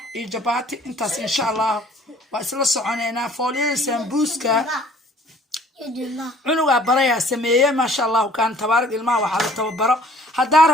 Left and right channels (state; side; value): normal; both; correlation 0.55